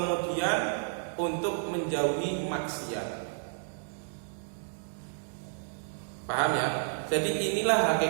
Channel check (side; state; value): left; silent; digital silence